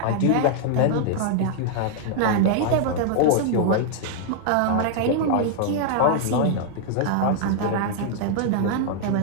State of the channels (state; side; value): different; both; correlation 0.00